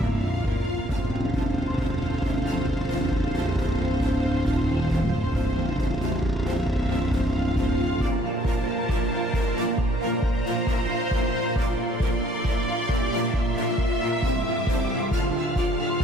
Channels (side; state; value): both; normal; correlation 0.63